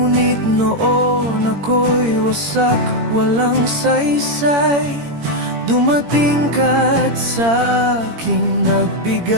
noon ako'y wasak, walang saysay. Dumating ka't sa aking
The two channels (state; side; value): late; left; 17 ms